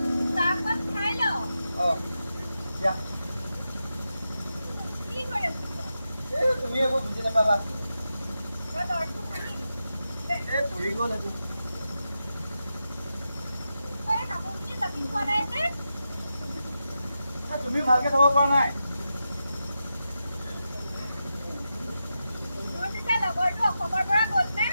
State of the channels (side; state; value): both; inverted; correlation -0.89